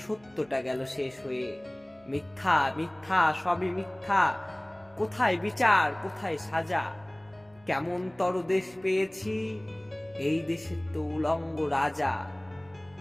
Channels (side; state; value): right; noise; hum, 29 dB below the sound